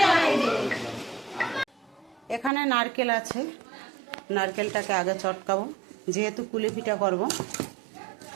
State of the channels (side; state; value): left; drops out; at 2.5 s